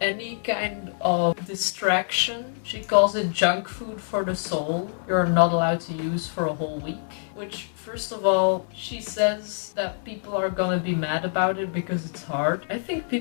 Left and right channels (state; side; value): silent; right; 61 dB below the other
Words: kind of distraction, she calls it junk food for the soul, you're not allowed to use for a whole week. Which, first of all, she says that people are gonna be mad about it because it's hard. I think